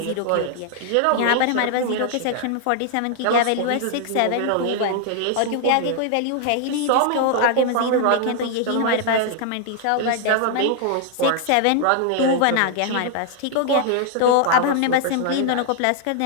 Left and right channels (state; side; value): different; both; correlation 0.00